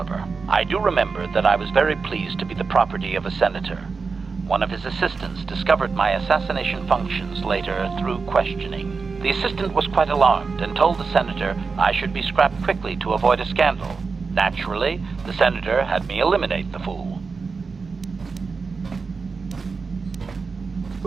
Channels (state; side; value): quieter; left; 4.7 dB